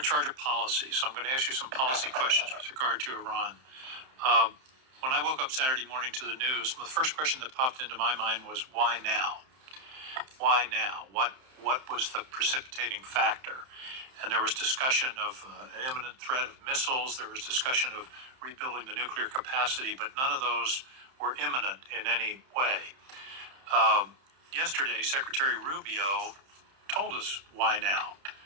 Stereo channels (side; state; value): left; late; 31 ms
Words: charge of policy, so I'm going to ask you some policy questions with regard to Iran. When I woke up Saturday morning to the news, the first question that popped into my mind was, why now? Why now? What was the precipitating factor? And there was discussion of an imminent threat of missiles. There was discussion of rebuilding the nuclear capacity, but none of those were imminent in any way. Yesterday, Secretary Rubio told us why now.